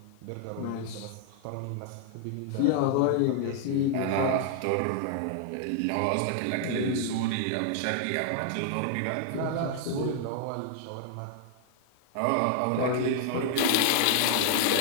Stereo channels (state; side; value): different; both; correlation 0.00